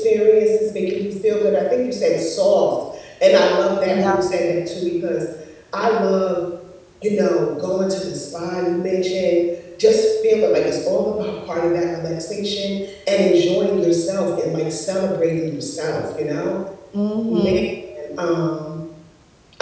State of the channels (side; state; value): both; identical; correlation 1.00